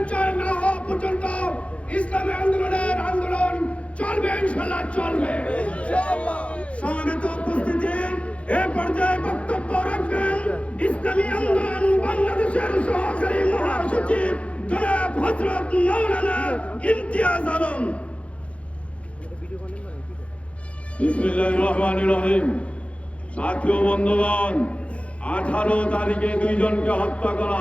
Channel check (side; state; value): right; late; 0.062 ms